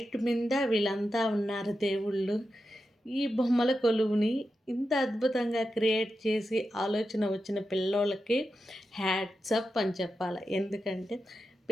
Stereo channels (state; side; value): normal; both; correlation 0.89